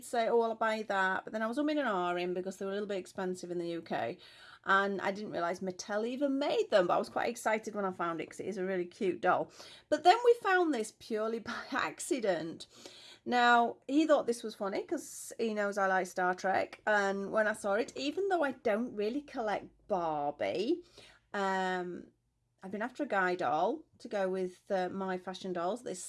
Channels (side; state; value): both; identical; correlation 1.00